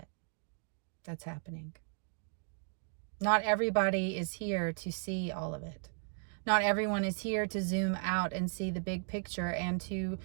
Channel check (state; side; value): silent; left; 54 dB below the other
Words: that's happening. Not everybody is here to see all of it. Not everyone is here to zoom out and see the big picture and to